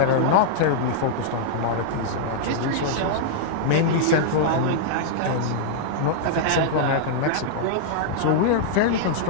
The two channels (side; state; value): both; different; correlation -0.02